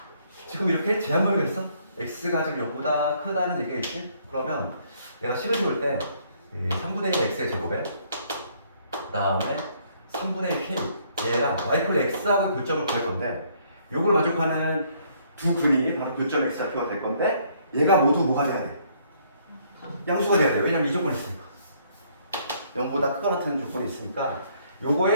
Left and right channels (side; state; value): both; inverted; correlation -0.66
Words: 지금 이렇게 제한범위가 있어. x가 지금 0보다 크다는 얘기가 있지. 그러면 내가 식을 세울 때 3분의 1 x의 제곱에 그 다음에 3분의 1 k 얘랑 y 콜 x하고 교점을 구할 건데 요걸 만족하는 두 근이 바로 교점 x좌표가 될 건데 얘가 모두 뭐가 돼야 돼? 양수가 돼야 돼. 왜냐면 이 조건이 있으니까 0보다 크거나 같은 조건이 있으니까